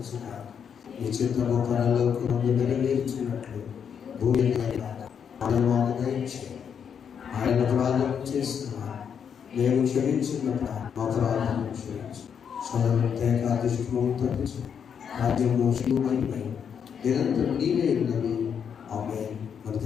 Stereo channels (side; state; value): right; quieter; 7.5 dB